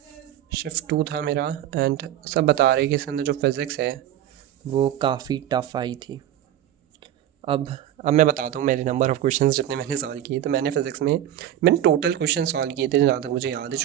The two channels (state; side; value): quieter; left; 11.7 dB